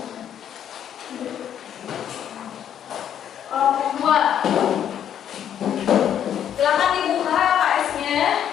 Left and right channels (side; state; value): right; quieter; 9.7 dB